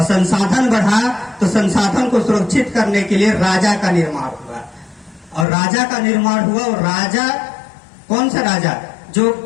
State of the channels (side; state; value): right; drops out; at 5.5 s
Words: संसाधन बढ़ा तो संसाधन को सुरक्षित करने के लिए राजा का निर्माण हुआ। और राजा का निर्माण हुआ, और राजा कौन सा राजा, जो